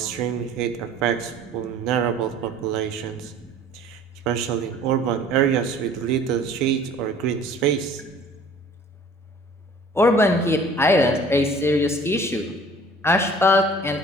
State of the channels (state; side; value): normal; both; correlation 0.49